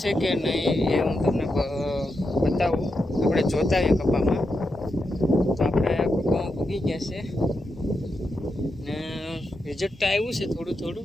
કે નહીં એ હું તમને બતાવું. આપણે જોતા આવીએ કપામાં. તો આપણે કપામાં ઉગી ગયા છે ને રિઝલ્ટ તો આવ્યું છે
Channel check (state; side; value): normal; both; correlation 0.86